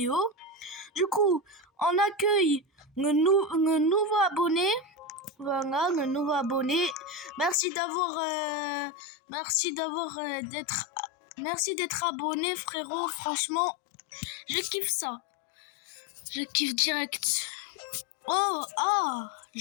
Du coup, on accueille le nouveau abonné. Voilà, le nouveau abonné. Merci d'être abonné, frérot. Franchement, je kiffe ça. Je kiffe direct. Oh,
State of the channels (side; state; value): right; drops out; at 7.6 s